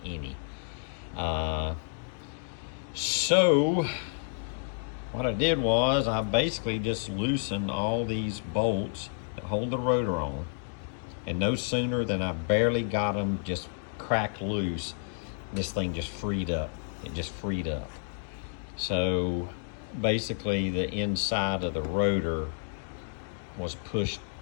any. So what I did was I basically just loosened all these bolts that hold the rotor on, and no sooner than I barely got them just cracked loose, this thing just freed up. It just freed up. So basically the inside of the rotor was pushed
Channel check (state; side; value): silent; right; digital silence